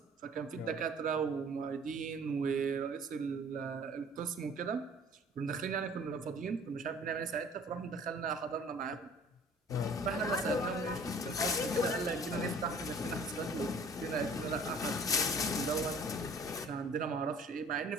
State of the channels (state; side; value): normal; both; correlation 0.51